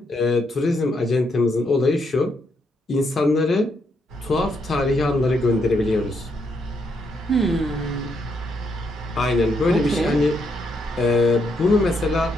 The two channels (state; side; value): normal; both; correlation 0.77